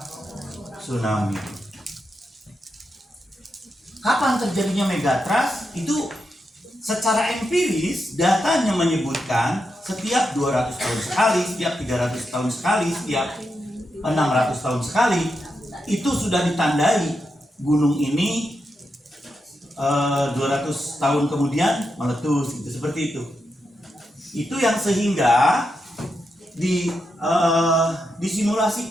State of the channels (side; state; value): both; normal; correlation 0.85